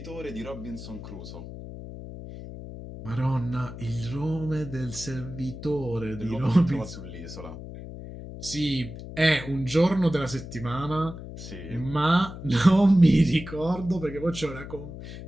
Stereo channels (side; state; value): left; noise; hum, 11 dB below the sound